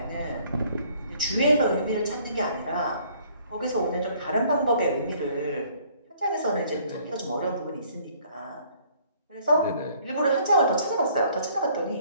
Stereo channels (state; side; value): inverted; both; correlation -0.60